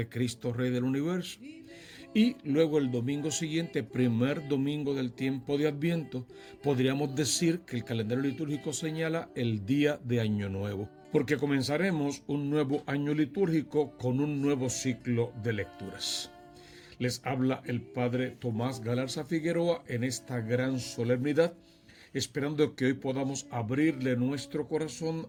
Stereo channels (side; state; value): both; identical; correlation 1.00